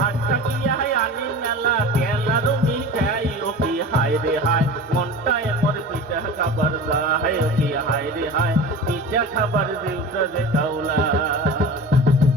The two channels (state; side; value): normal; both; correlation 0.34